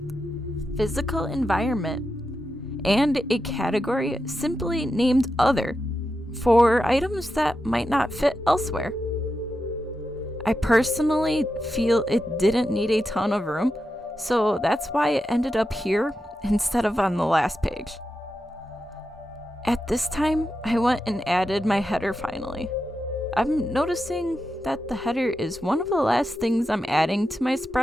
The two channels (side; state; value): both; normal; correlation 0.88